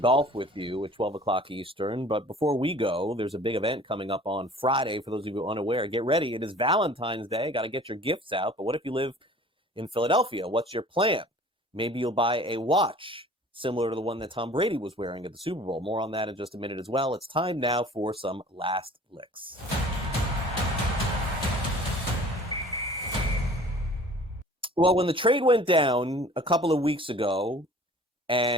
golf with you at 12 o'clock Eastern. But before we go, there's a big event coming up on Friday. For those of you unaware, get ready. It is Valentine's Day. Got to get your gifts out. But what if you live in Philadelphia? What's your plan? Maybe you'll buy a watch similar to the one that Tom Brady was wearing at the Super Bowl. More on that in just a minute as well. It's time now for some last licks. Well, when the trade went down a couple of weeks ago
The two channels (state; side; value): normal; both; correlation 0.48